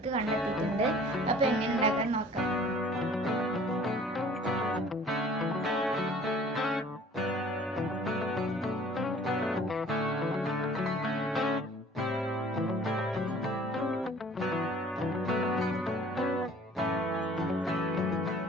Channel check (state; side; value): normal; both; correlation 0.51